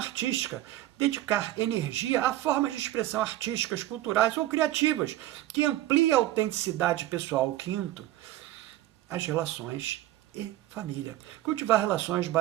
dedicar energia a formas de expressão artísticas, culturais ou criativas, que ampliem a autenticidade pessoal. O quinto, as relações e família. Cultivar relações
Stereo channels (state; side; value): quieter; left; 14.9 dB